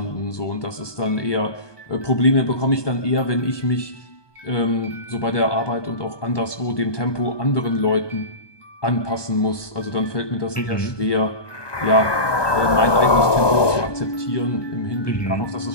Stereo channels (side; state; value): right; late; 1.2 ms